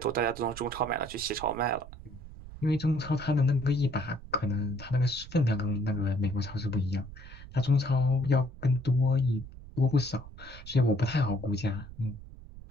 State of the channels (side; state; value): right; noise; rumble, 15 dB below the sound